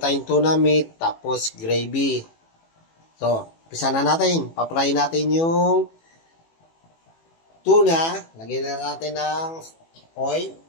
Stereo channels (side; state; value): right; late; 18 ms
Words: tayong tuna meat, tapos gravy. So, umpisa na natin. Papray natin yung tuna. Lagyan na natin ng oil.